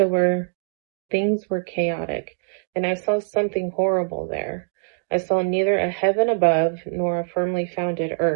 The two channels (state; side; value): silent; left; digital silence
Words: where things were chaotic, and I saw something horrible there. I saw neither a heaven above nor a firmly founded